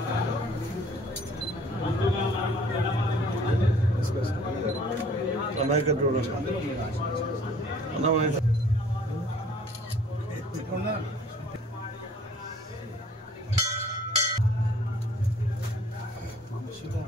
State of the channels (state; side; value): normal; both; correlation 0.55